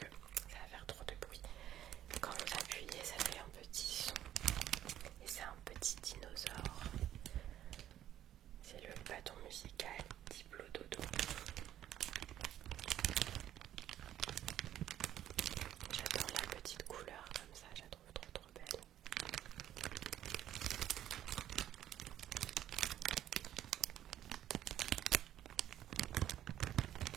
ça va faire trop de bruit. Quand vous appuyez, ça fait un petit son et c'est un petit dinosaure. C'est le bâton musical Diplo Dodo. J'adore la petite couleur comme ça, je la trouve trop belle.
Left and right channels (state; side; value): quieter; left; 11.8 dB